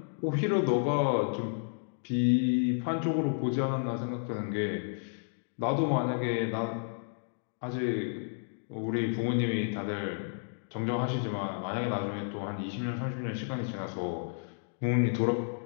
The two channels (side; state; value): right; silent; digital silence